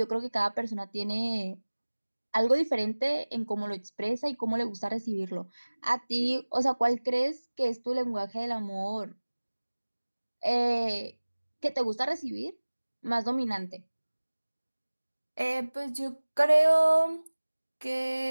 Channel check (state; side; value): inverted; both; correlation -1.00